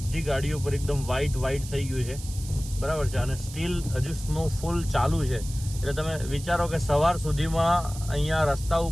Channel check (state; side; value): noise; right; hiss, 14 dB below the sound